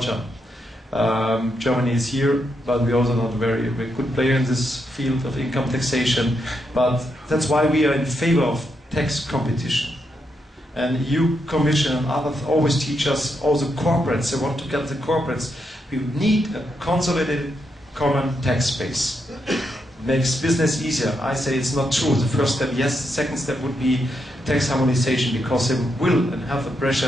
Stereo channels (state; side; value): normal; both; correlation 0.81